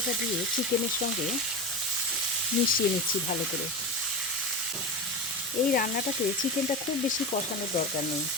দিয়ে চিকেনের সঙ্গে মিশিয়ে নিচ্ছি ভালো করে। এই রান্নাটাতে চিকেনটা খুব বেশি কষানোর দরকার নেই,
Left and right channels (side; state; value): both; normal; correlation 0.23